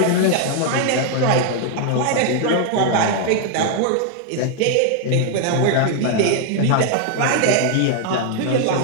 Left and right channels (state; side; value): different; both; correlation 0.00